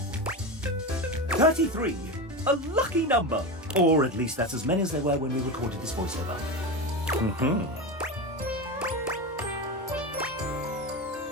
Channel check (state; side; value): normal; both; correlation 0.20